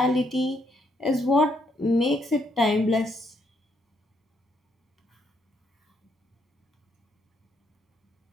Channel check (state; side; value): normal; both; correlation 0.74